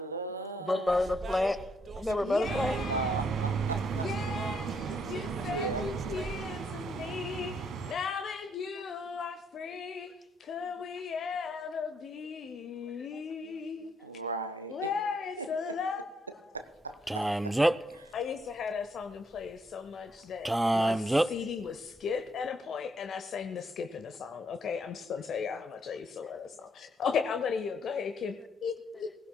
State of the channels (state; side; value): normal; both; correlation 0.73